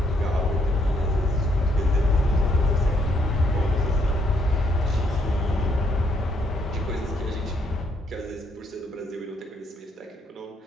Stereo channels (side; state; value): both; normal; correlation 0.72